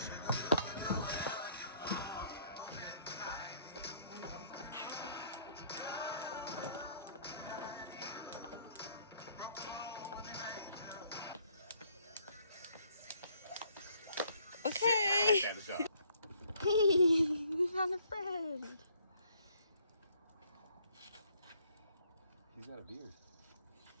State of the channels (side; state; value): both; inverted; correlation -0.65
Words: Okay. We found a friend. He's got a beard.